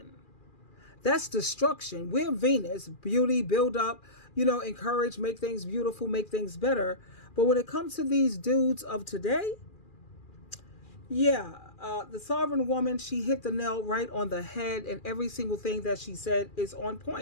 That's destruction. We're Venus, beauty, build up, you know, encourage, make things beautiful, make things better. But when it comes to these dudes of today, yeah, the sovereign woman, she hit the nail right on the head, and every single thing that she said is on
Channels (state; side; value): late; right; 2.4 ms